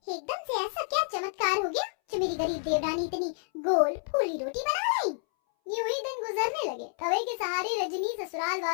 एकदम से ऐसा क्या चमत्कार हो गया जो मेरी गरीब देवरानी इतनी गोल फूली रोटी बना लाई। यूं ही दिन गुजरने लगे। तवे के सहारे रजनी ससुराल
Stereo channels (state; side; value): silent; right; 58 dB below the other